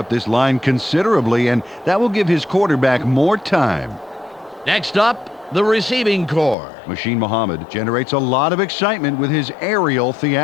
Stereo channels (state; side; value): drops out; right; at 6.6 s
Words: this line considerably, and that will give his quarterback more time. Next up, the receiving corps. Machine Muhammad generates a lot of excitement with his aerial